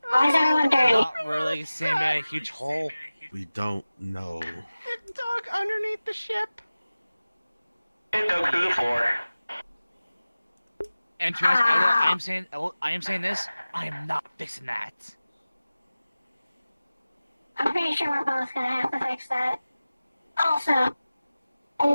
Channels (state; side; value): inverted; both; correlation -0.97